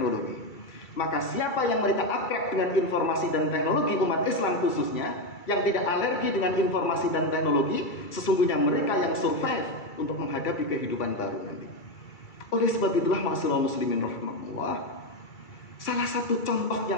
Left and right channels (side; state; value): right; late; 2.3 ms